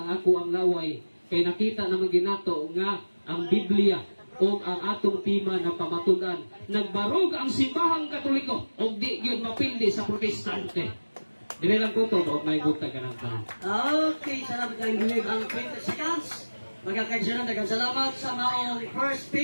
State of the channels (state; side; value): inverted; both; correlation -1.00